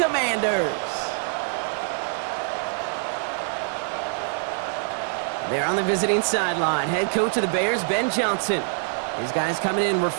They're on the visiting sideline. Head coach of the Bears, Ben Johnson. His guys coming in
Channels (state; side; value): silent; left; 62 dB below the other